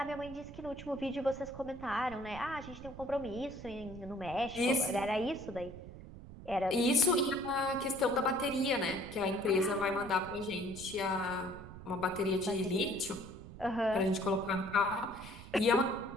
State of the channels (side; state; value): right; noise; rumble, 14 dB below the sound